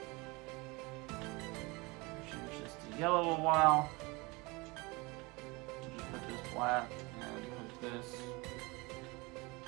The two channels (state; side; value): quieter; left; 25.5 dB